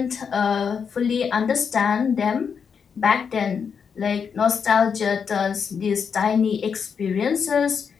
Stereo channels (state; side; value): quieter; right; 6.5 dB